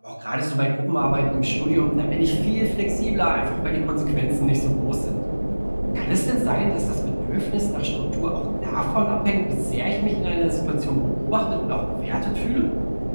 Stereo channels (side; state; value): both; inverted; correlation -1.00